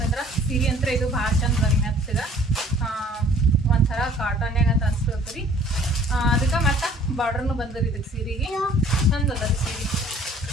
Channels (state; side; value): normal; both; correlation 0.54